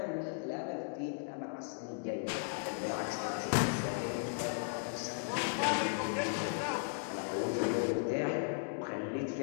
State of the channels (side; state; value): right; silent; digital silence